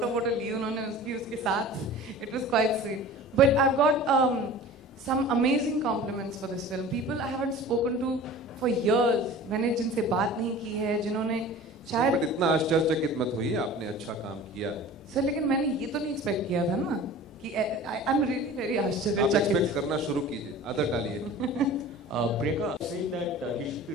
ली उन्होंने उसके साथ. It was quite sweet. But I've got some amazing compliments for this film. People I haven't spoken to for years, मैंने जिनसे बात नहीं की है, जिन्होंने शायद. But इतना आश्चर्यचकित मत होइए, आपने अच्छा काम किया है. सर लेकिन मैंने ये तो नहीं एक्सपेक्ट किया था ना कि I'm really very आश्चर्यचकित. आप एक्सपेक्ट करना शुरू कीजिए, आदत डालिए. Priyanka saying that he should be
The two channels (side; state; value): both; normal; correlation 0.40